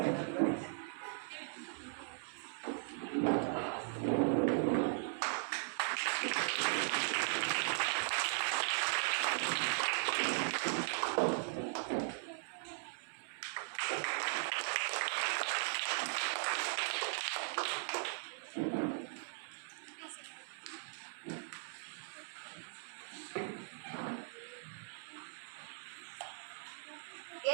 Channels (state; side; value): silent; left; 52 dB below the other